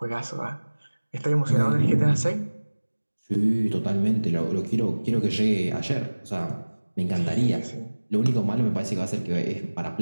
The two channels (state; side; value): inverted; both; correlation -1.00